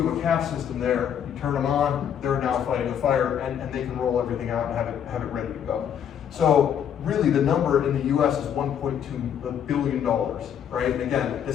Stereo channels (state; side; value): quieter; right; 8.9 dB